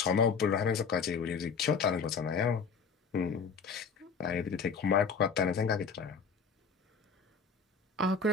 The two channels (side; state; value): right; quieter; 5.6 dB